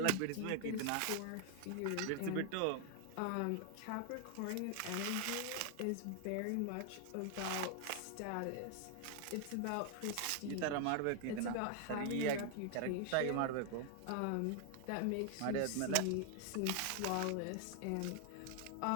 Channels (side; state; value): both; different; correlation 0.00